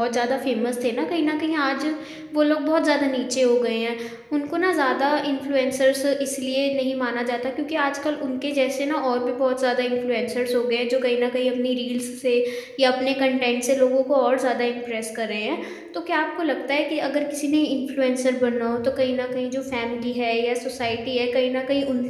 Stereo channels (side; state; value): both; identical; correlation 1.00